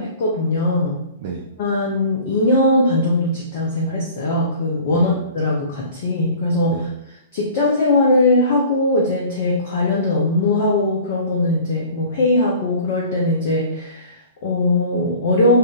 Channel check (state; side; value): inverted; both; correlation -0.45